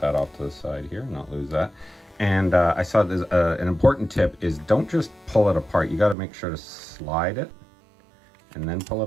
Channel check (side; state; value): left; drops out; at 6.2 s